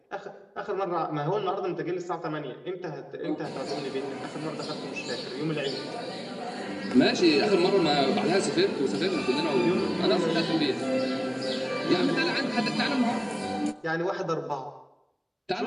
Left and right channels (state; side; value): identical; both; correlation 1.00